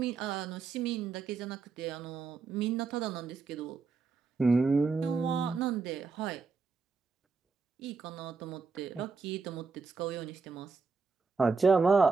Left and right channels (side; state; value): left; quieter; 4.7 dB